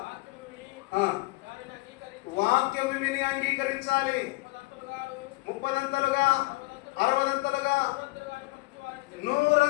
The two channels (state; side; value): quieter; right; 23.1 dB